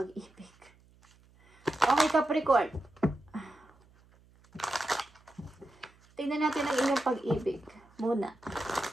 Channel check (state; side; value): noise; right; hum, 29 dB below the sound